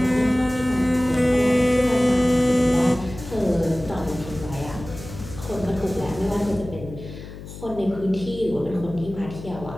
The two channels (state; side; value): noise; left; hum, 13 dB below the sound